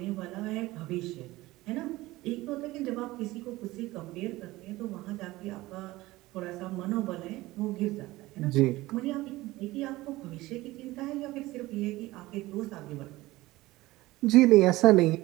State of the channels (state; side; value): quieter; left; 18.7 dB